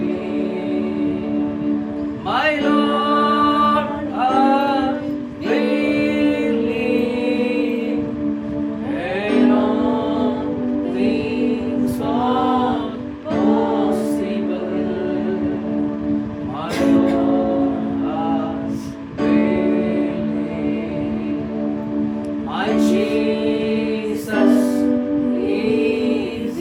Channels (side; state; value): both; identical; correlation 1.00